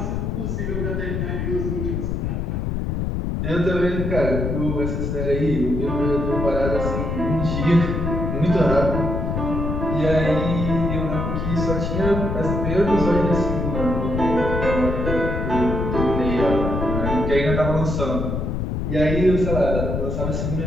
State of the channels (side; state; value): left; noise; rumble, 1 dB below the sound